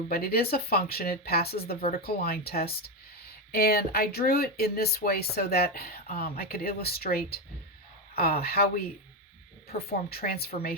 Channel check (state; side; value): normal; both; correlation 0.10